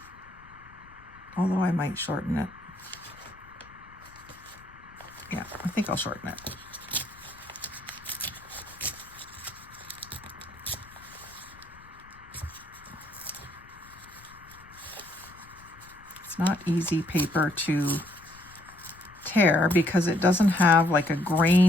although I might shorten it. Yeah, I think I'll shorten it. It's not easy paper to tear because it doesn't have like a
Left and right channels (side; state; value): left; noise; rumble, 23 dB below the sound